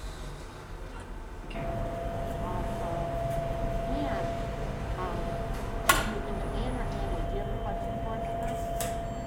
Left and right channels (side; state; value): both; identical; correlation 1.00